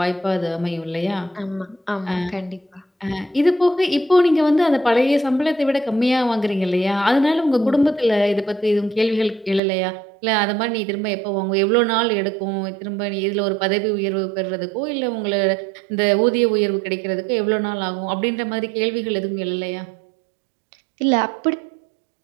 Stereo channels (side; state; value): left; drops out; at 9.6 s